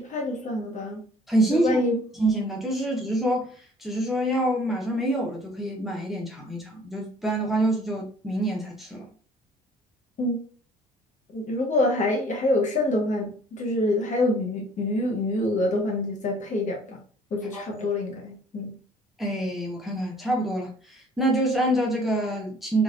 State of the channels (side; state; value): both; normal; correlation 0.55